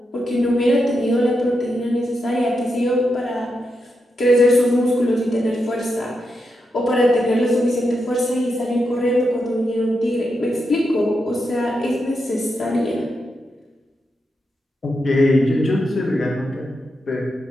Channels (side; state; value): both; normal; correlation 0.85